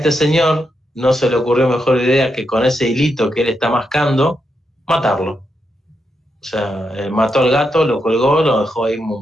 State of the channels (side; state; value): both; normal; correlation 0.83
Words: señor no se le ocurrió mejor idea que con ese hilito que él está mascando, matarlo. O sea, mató al gato, lo colgó, lo dejó ahí